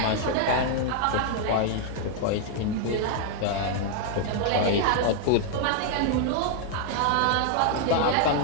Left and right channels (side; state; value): both; different; correlation 0.00